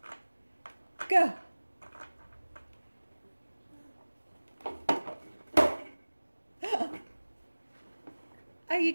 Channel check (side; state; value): both; inverted; correlation -1.00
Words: Go. Are you